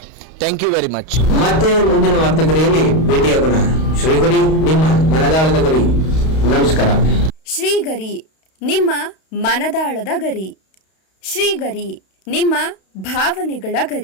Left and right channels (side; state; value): right; late; 32 ms